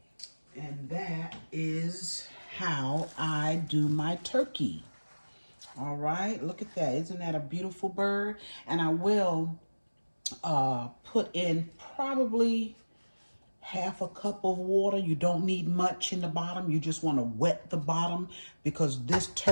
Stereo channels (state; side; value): inverted; both; correlation -1.00